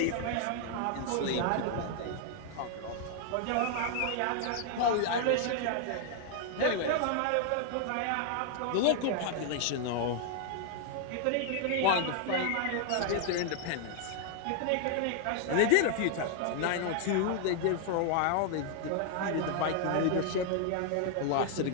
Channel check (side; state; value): both; different; correlation 0.00